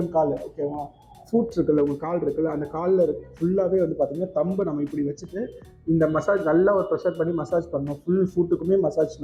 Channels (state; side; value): identical; both; correlation 1.00